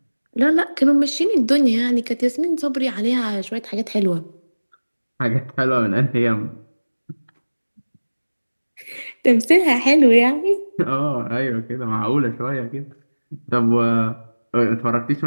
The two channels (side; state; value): both; inverted; correlation -1.00